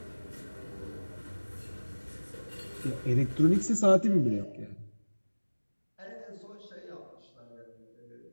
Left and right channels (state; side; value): inverted; both; correlation -1.00